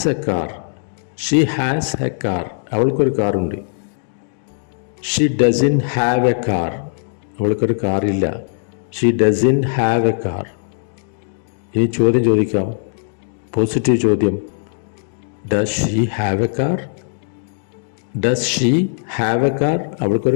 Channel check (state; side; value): silent; right; digital silence